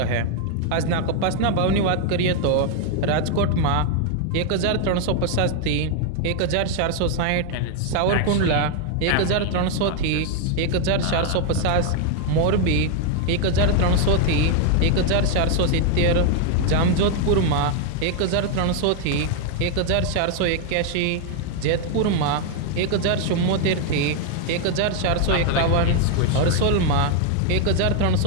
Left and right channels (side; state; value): both; different; correlation 0.00